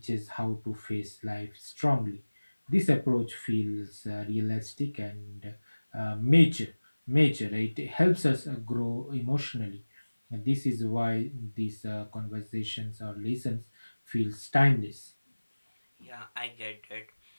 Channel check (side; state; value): both; inverted; correlation -1.00